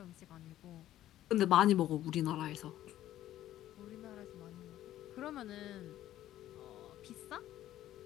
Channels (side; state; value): right; quieter; 13.2 dB